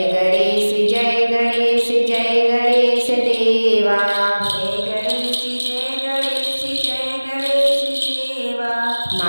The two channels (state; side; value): inverted; both; correlation -1.00